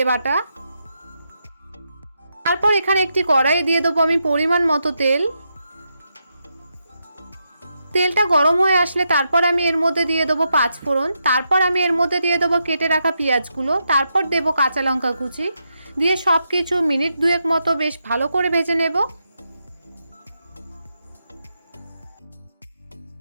বাটা, তারপর এখানে একটি কড়াই দিয়ে দেবো আমি পরিমাণ মতো তেল। তেলটা গরম হয়ে আসলে তারপর আমি এর মধ্যে দিয়ে দেবো 5 ফোড়ন, তারপর আমি এর মধ্যে দিয়ে দেবো কেটে রাখা পেঁয়াজগুলো, তারপর দেব কাঁচা লঙ্কা কুচি, দিয়ে সব কিছু মিনিট দুয়েক মতো বেশ ভালো করে ভেজে নেব।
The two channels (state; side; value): inverted; both; correlation -0.84